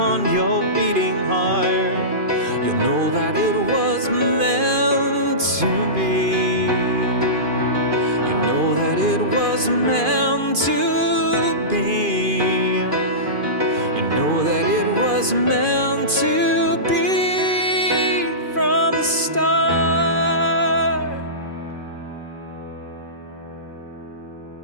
your beating heart, you'll know that it was meant to be. You know that it was meant to be. You know that it was meant to be from the start.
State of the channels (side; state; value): left; late; 2.5 ms